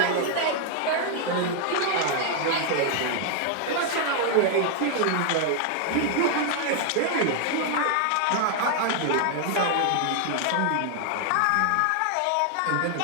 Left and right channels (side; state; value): both; different; correlation 0.00